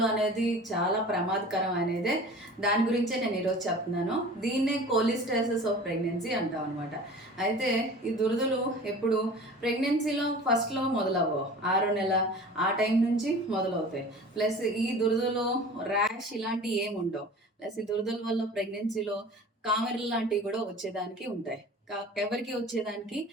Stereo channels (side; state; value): both; normal; correlation 0.41